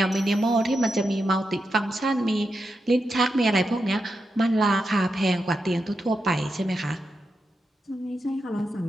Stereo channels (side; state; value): both; normal; correlation 0.87